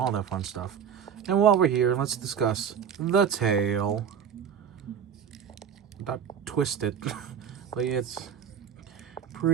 that fun stuff. And while we're here, let's discuss the tail. Not twisted, but it's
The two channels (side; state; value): left; quieter; 7.8 dB